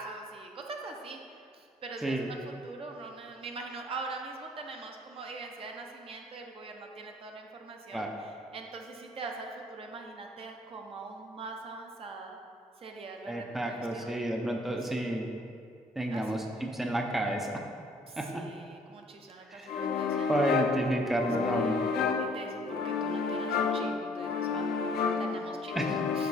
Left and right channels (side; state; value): both; normal; correlation 0.59